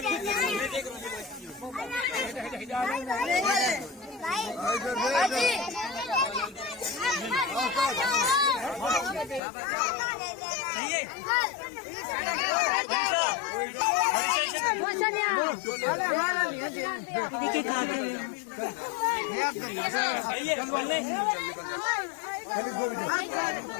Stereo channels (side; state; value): right; drops out; at 9.4 s